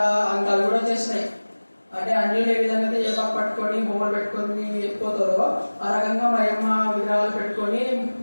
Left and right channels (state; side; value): inverted; both; correlation -1.00